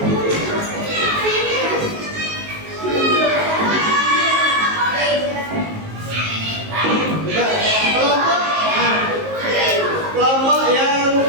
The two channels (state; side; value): late; left; 19 ms